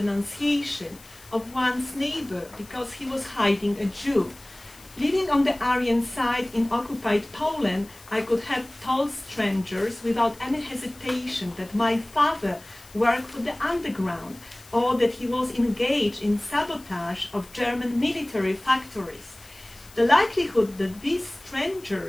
of one's neighbor because he was hiding a Jew. Living on the Aryan side in occupied Poland, I could have told strangers without any hesitation that my father worked for the underground, or that he was engaged in sabotage of German military factories. The likelihood that these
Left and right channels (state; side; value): noise; left; hiss, 23 dB below the sound